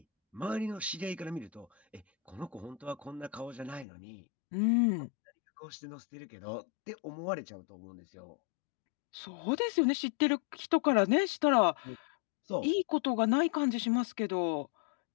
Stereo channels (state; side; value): drops out; right; at 3.9 s